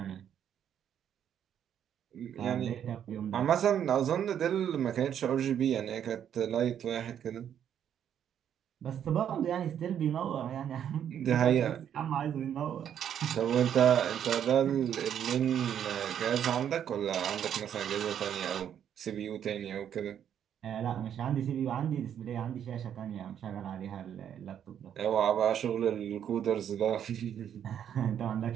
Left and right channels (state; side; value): quieter; left; 9.3 dB